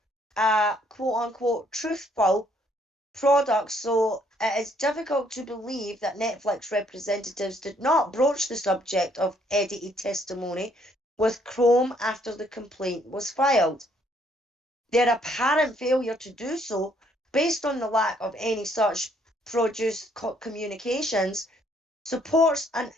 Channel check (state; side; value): normal; both; correlation 0.67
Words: a quote-unquote truthful product, so it is difficult to believe that Netflix representatives did not broach the subject of edited testimony with Chrome after the complaint was filed. Their apparent failure to do so, based on the lack of any such produced communications, supports an